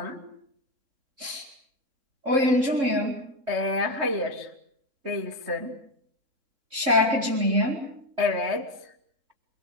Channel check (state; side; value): late; left; 3.6 ms